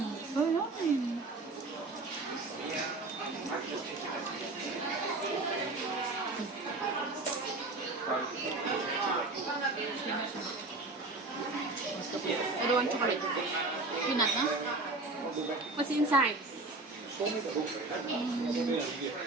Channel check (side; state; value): left; quieter; 3.2 dB